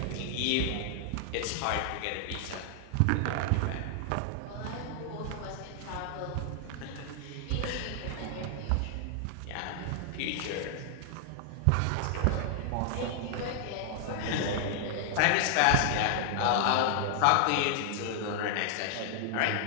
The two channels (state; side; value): different; both; correlation 0.00